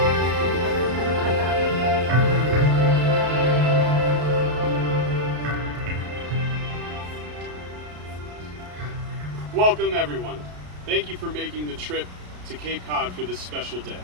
Welcome, everyone. Thank you for making the trip to Cape Cod for this special day.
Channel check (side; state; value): left; late; 33 ms